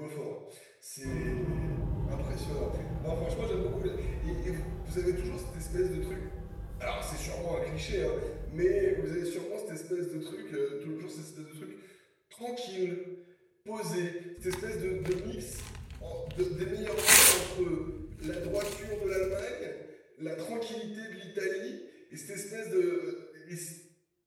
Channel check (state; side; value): identical; both; correlation 1.00